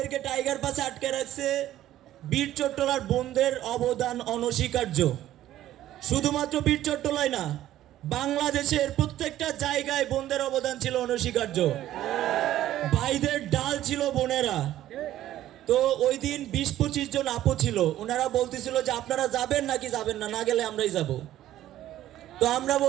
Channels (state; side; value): quieter; left; 13.3 dB